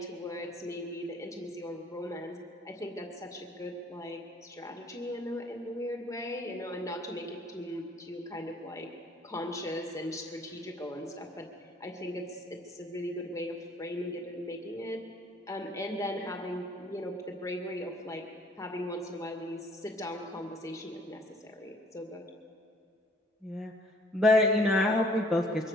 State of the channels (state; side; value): normal; both; correlation 0.58